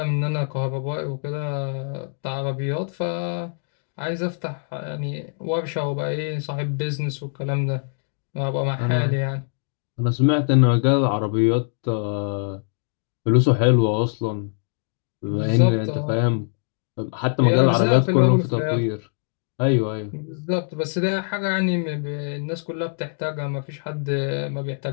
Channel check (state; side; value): silent; right; digital silence